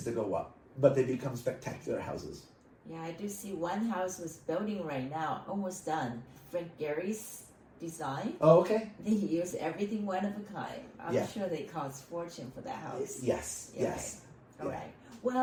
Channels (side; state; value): both; identical; correlation 1.00